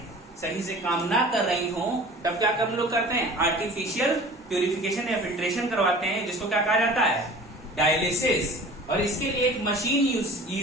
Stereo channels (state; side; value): normal; both; correlation 0.43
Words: सही से काम ना कर रही हो, तब क्या हम लोग करते हैं, आर्टिफिशियल प्यूरिफिकेशन या फिल्ट्रेशन करवाते हैं, जिसको क्या कहा जाता है, डायलिसिस। और इसके लिए एक मशीन